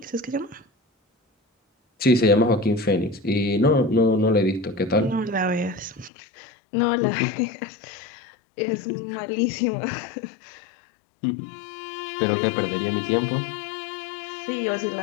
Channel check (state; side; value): drops out; right; at 6.1 s